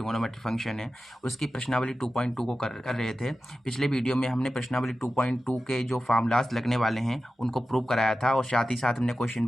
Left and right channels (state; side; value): normal; both; correlation 0.94